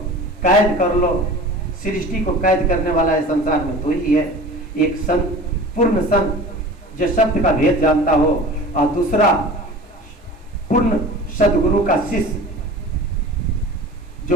कैद कर लो। सृष्टि को कैद करने वाला है संसार में तो ही है, एक संत, पूर्ण संत जो शब्द का भेद जानता हो, और दूसरा पूर्ण सदगुरु का शिष्य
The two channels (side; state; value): both; normal; correlation 0.39